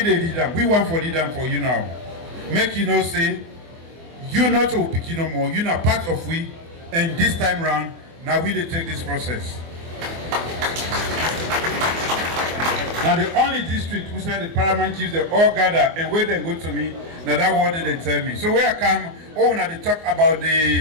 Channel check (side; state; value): left; late; 24 ms